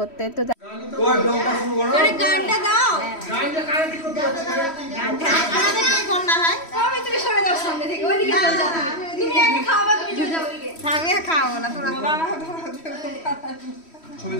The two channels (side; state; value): right; late; 3.1 ms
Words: তো গানটা দাও, খাওয়াবো না তোরা ছবি